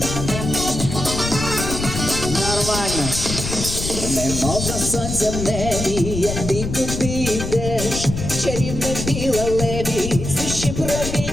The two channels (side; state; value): left; noise; rumble, 5 dB below the sound